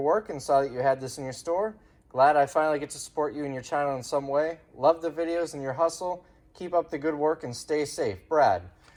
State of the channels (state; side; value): identical; both; correlation 1.00